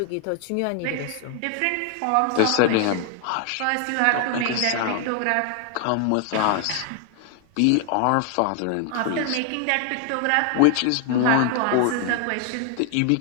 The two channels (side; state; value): both; different; correlation 0.00